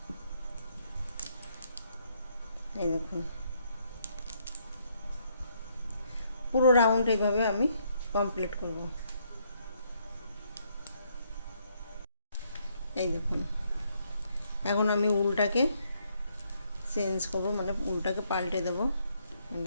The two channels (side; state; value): both; inverted; correlation -0.72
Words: এই দেখুন, পুরো রাউন্ড এইভাবে আমি কমপ্লিট করব। এই দেখুন, এখন আমি উলটাকে চেঞ্জ করব, মানে উলটাকে পাল্টে দেব।